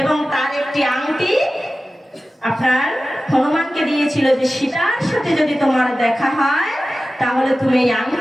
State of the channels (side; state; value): both; normal; correlation 0.95